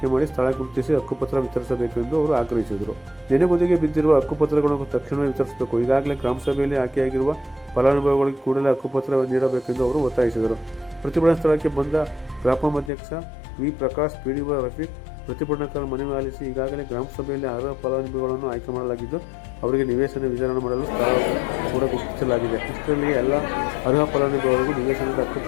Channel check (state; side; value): drops out; right; at 12.9 s